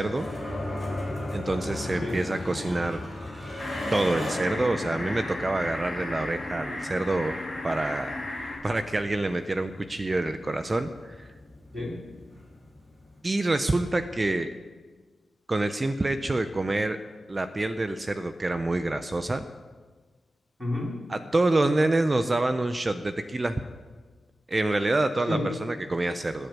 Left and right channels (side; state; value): both; normal; correlation 0.95